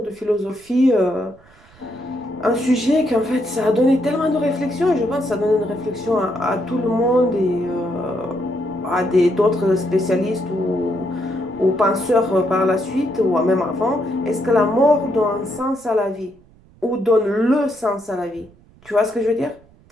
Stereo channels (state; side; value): noise; right; rumble, 27 dB below the sound